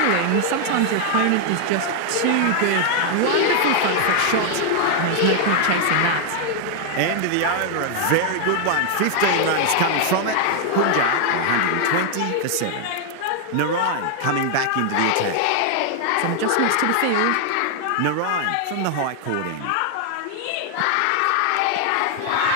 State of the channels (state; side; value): different; both; correlation 0.00